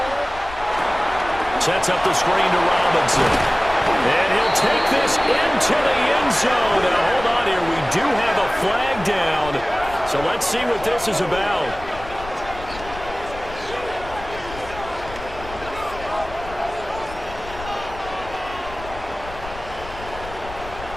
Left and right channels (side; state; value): left; noise; rumble, 14 dB below the sound